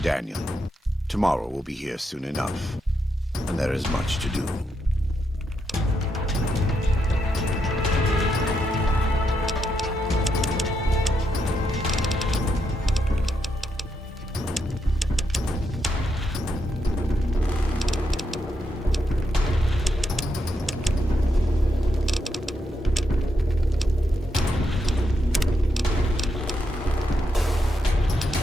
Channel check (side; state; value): both; normal; correlation 0.81